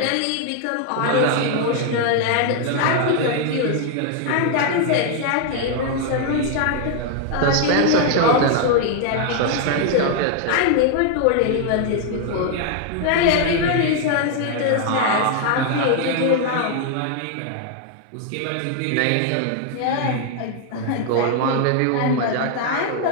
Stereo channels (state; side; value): different; both; correlation 0.00